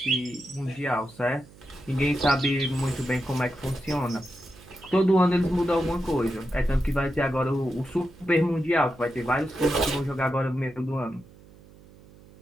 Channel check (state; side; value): noise; right; hum, 23 dB below the sound